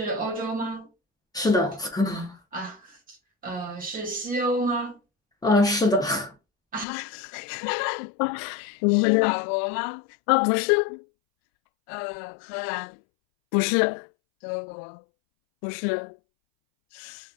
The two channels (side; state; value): right; drops out; at 6.9 s